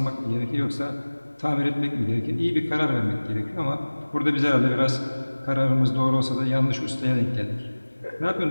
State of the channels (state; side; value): inverted; both; correlation -1.00